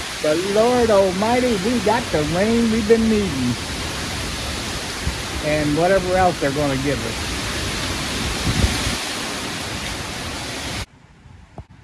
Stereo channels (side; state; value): both; identical; correlation 1.00